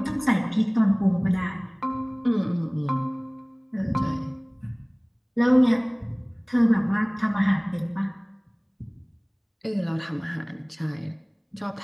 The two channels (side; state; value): both; identical; correlation 1.00